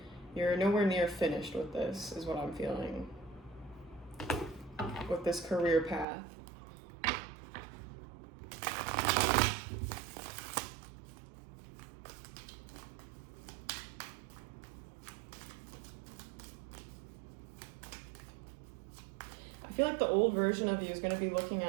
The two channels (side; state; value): left; drops out; at 6.1 s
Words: You're nowhere near finished with this, is what I'm feeling, with this career path. I feel like the old version of you is going to be looking